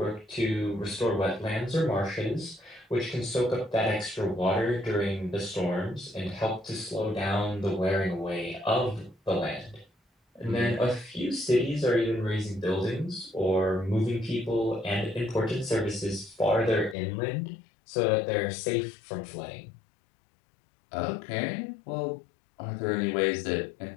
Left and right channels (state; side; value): drops out; right; at 16.9 s